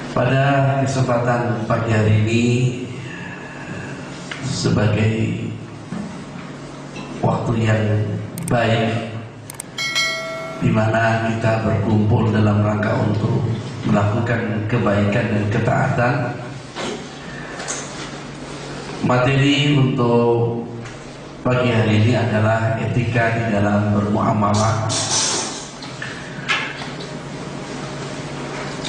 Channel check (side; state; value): both; identical; correlation 1.00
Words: Pada kesempatan pagi hari ini, sebagai waktu yang baik di mana kita berkumpul dalam rangka untuk melakukan kebaikan dan ketaatan, materi untuk pagi hari ini adalah etika di dalam bermuamalah.